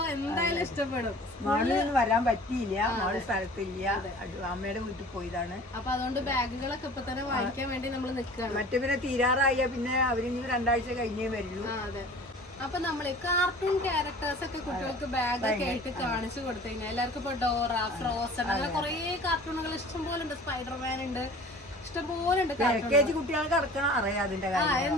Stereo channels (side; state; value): both; normal; correlation 0.44